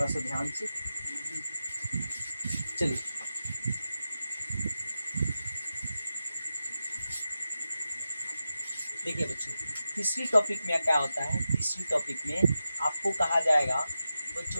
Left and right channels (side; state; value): both; inverted; correlation -0.90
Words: सा ध्यान से। चलिए देखिए बच्चों, तीसरी टॉपिक में क्या होता है? तीसरी टॉपिक में आपको कहा जाएगा